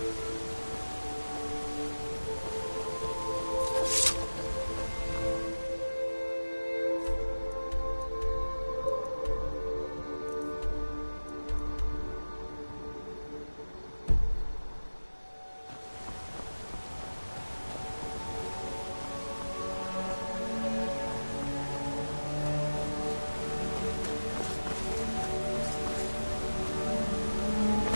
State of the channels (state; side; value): inverted; both; correlation -1.00